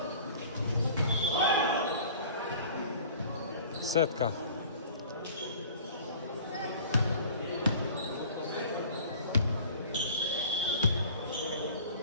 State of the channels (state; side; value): inverted; both; correlation -0.46